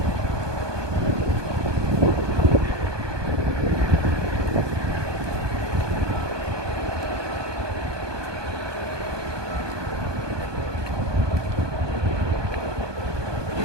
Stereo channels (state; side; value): late; left; 1.2 ms